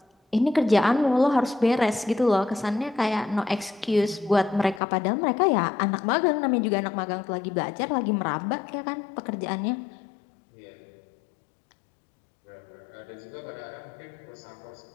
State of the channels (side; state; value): right; drops out; at 4.8 s